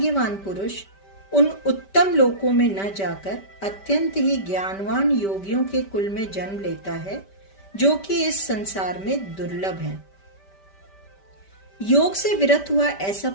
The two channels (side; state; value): right; late; 5.1 ms